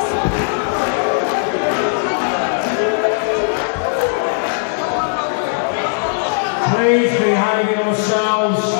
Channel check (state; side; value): silent; right; 68 dB below the other